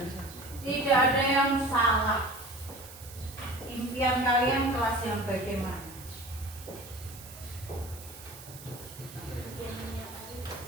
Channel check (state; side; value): noise; right; hiss, 17 dB below the sound